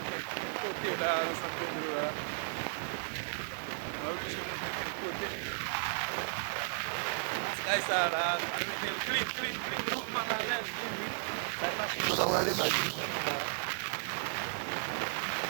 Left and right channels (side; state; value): left; silent; 55 dB below the other